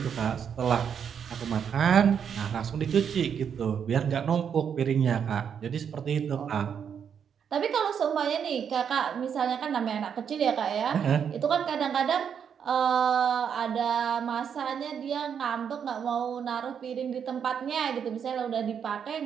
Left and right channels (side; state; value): left; quieter; 7.7 dB